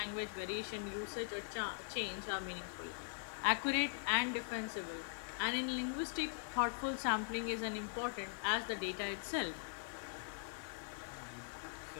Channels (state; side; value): quieter; right; 37.6 dB